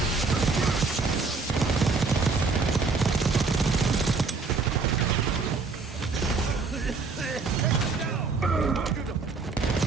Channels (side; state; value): left; quieter; 4.3 dB